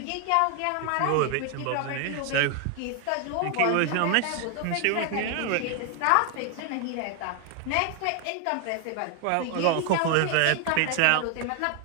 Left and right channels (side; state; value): both; different; correlation 0.00